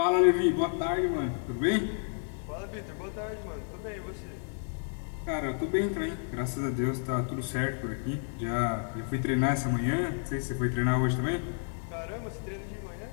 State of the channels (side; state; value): right; silent; digital silence